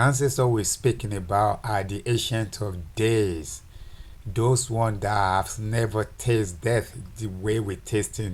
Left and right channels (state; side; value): identical; both; correlation 1.00